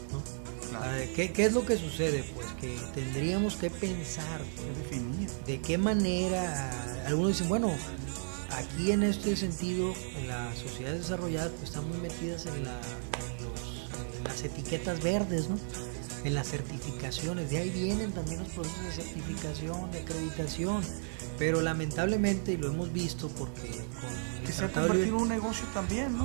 ¿no? Claro. ¿Qué es lo que sucede? Pues que tendríamos que pensar, definir de qué manera. Algunos dicen, bueno, aquí en este sentido, en las sociedades desarrolladas pues están muy metidas en las etiquetas verdes, ¿no? En las certificaciones, de ahí vienen también los procesos de certificación, de acreditación, pero lamentablemente, y lo hemos visto porque que se ha convertido en un negocio también,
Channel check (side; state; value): left; silent; 55 dB below the other